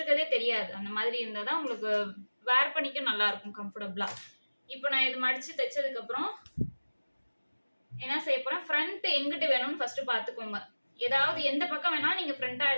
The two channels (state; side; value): inverted; both; correlation -1.00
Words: தெரியாது. அந்த மாதிரி இருந்தாதான் உங்களுக்கு வேர் பண்ணிக்க நல்லா இருக்கும், கம்ஃபர்டபுளா. இப்போ நான் இது மடிச்சு தைச்சதுக்கு அப்புறம் என்ன செய்ய போறேன், ஃப்ரண்ட் எங்கிட்டு வேணும்னு ஃபர்ஸ்ட் பாத்துக்கோங்க. ஏதாவது எந்த பக்கம் வேணாலும் நீங்க ஃப்ரண்டா